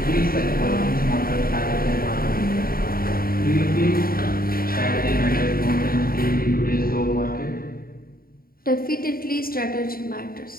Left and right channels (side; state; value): right; late; 0.43 ms